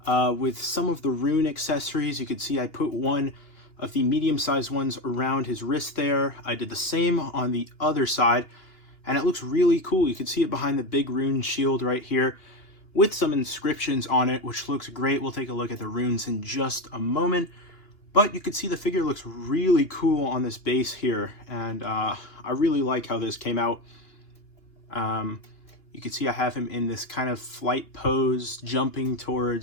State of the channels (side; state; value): right; late; 2.8 ms